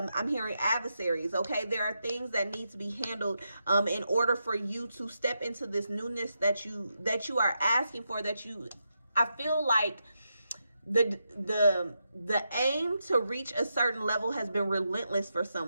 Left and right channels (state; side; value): inverted; both; correlation -0.85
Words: I'm hearing adversaries, okay? There are things that need to be handled in order for you to step into this newness that you are asking for, I feel like the aim to reach a certain level has been relentless for